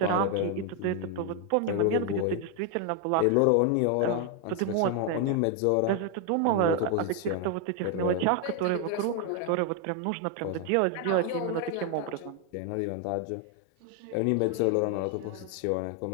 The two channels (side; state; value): both; different; correlation 0.00